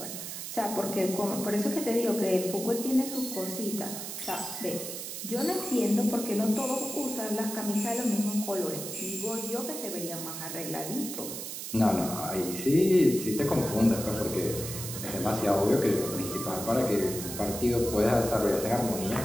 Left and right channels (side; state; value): right; noise; hiss, 7 dB below the sound